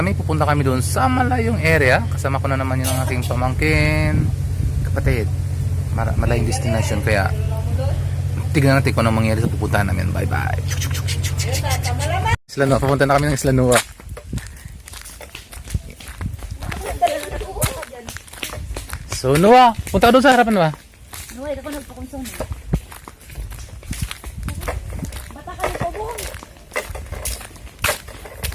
Pupunta kami doon sa malayong area. Kasama ko na naman yung aking pamangkin, kapatid. Malayong destination. Kaya tignan natin kung anong mangyari sa pupuntahan namin. Bye bye. Isla Nua. Papunta na kami ng Isla Nua. So Nua, punta ka doon sa harapan ba? Nua, ito ko nagpakonsong. Bata ka nito, buong.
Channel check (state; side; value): identical; both; correlation 1.00